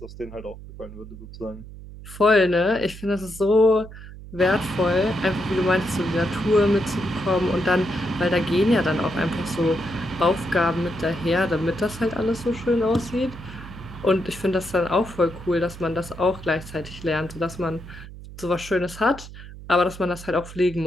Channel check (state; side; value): noise; right; hum, 15 dB below the sound